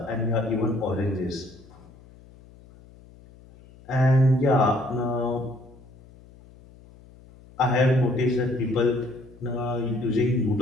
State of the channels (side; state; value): left; noise; hum, 24 dB below the sound